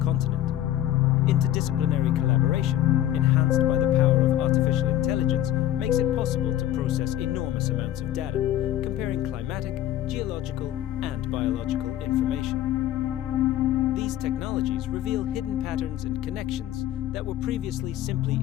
Interdisciplinary collaboration, enhanced by the power of artificial intelligence, makes it possible to process enormous amounts of data, comparing climatic, geological, and biological information. These technologies reveal hidden patterns and connections that were previously simply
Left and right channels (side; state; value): right; quieter; 12.5 dB